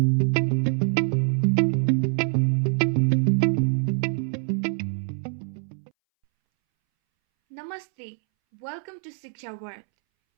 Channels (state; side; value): silent; left; 62 dB below the other